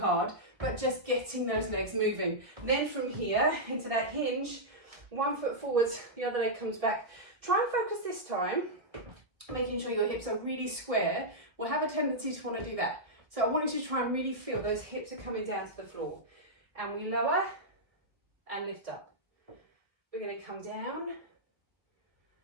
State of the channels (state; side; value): late; left; 1.4 ms